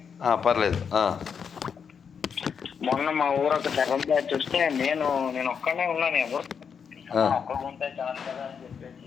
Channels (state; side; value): quieter; right; 6.7 dB